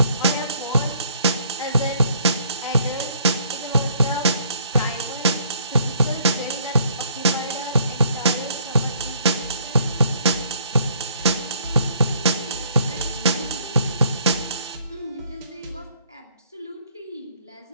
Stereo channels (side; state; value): both; inverted; correlation -0.63